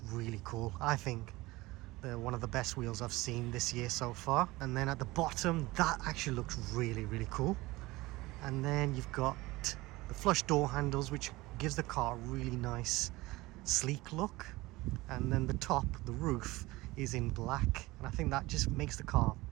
really cool. I think they're one of the best wheels I've seen this year so far. And then at the bottom, that actually looks really, really cool. And then you've got the flush door handles, which gives the car a really nice sleek look. And then the top, the roof, is in black, and I think that just makes the car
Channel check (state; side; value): quieter; left; 20.3 dB